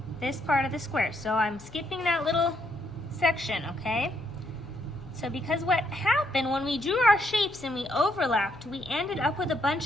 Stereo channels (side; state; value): both; normal; correlation 0.73